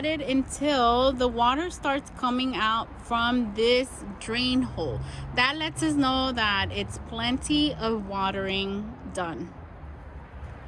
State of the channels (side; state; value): both; identical; correlation 1.00